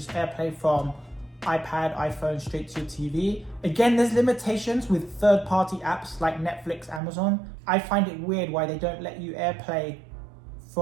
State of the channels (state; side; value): drops out; left; at 7.0 s